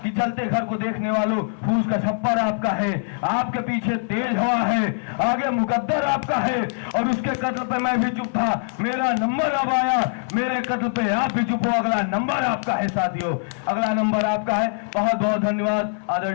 कि जलते घर को देखने वालों, फूस का छप्पर आपका है, आपके पीछे तेज हवा है, आगे मुकद्दर आपका है, और उसके कत्ल पे मैं भी चुप था, मेरा नंबर अब आया, मेरे कत्ल पे आप भी चुप हो, अगला नंबर आपका है साथियों, अगला नंबर आपका है। बहुत बहुत धन्यवाद।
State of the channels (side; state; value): right; silent; 56 dB below the other